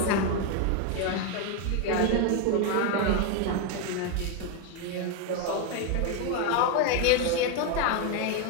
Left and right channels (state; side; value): different; both; correlation 0.01